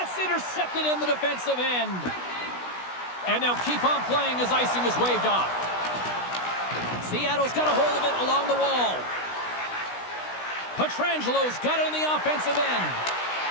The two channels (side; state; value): right; late; 16 ms